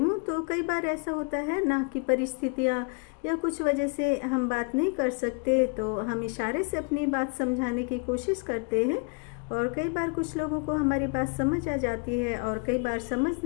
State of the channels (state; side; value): quieter; right; 35.8 dB